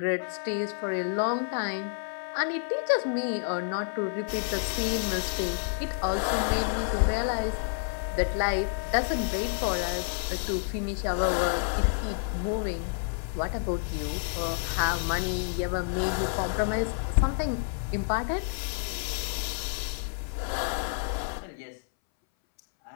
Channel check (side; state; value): right; silent; 58 dB below the other